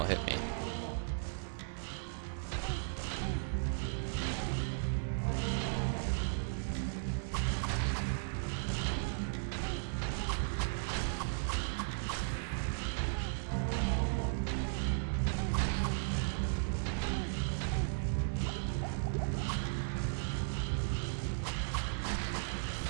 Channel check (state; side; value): silent; left; digital silence